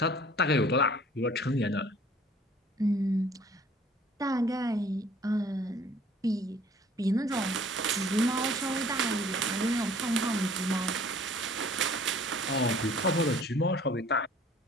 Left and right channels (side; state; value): both; normal; correlation 0.53